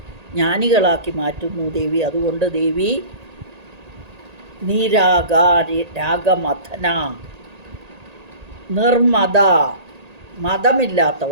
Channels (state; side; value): late; left; 1.8 ms